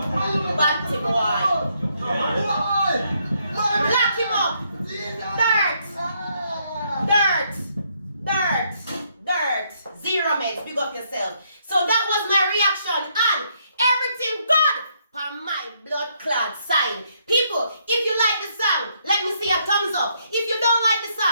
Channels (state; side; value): inverted; both; correlation -0.73